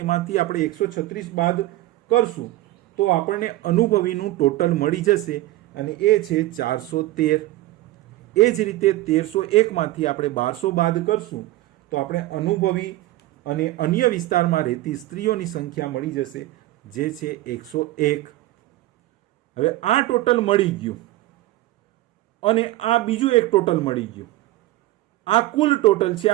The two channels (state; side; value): quieter; left; 16.8 dB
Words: આપણે 136 બાદ કરશું તો આપણને અનુભવીનું ટોટલ મળી જશે અને એ છે 413. એ જ રીતે 1301 માંથી આપણે 1200 બાદ કરશું તો આપણે અનુભવી અને અન્ય વિસ્તારમાં રહેતી સ્ત્રીઓની સંખ્યા મળી જશે, જે છે 101. હવે આ ટોટલ મળી ગયું અને આ બીજું એક ટોટલ મળી ગયું. આ કુલ ટોટલ છે,